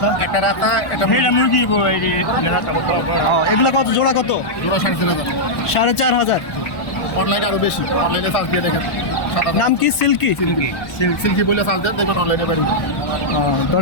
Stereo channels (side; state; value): right; late; 1.1 ms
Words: রাতা, একটা মুরগি। ও, এগুলা কত জোড়া? কত জোড়া 4.5 4,500। অনলাইনে আরো বেশি, অনলাইনে চার্জ দিয়ে দেখেন। নাম কি? সিল্কি। সিল্কি বলে চার্জ দেন, দেখবেন অনলাইনে পারি।